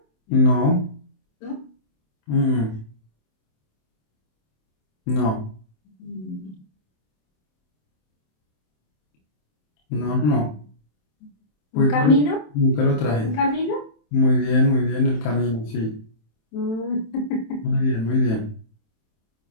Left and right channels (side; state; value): right; late; 27 ms